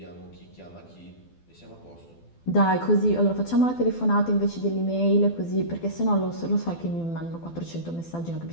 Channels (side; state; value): right; late; 12 ms